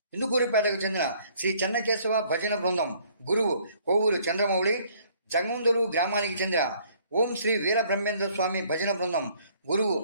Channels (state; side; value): inverted; both; correlation -0.61